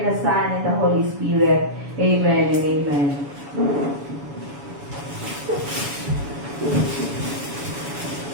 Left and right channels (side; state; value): left; late; 7.1 ms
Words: the Son, and the Holy Spirit. Amen and amen.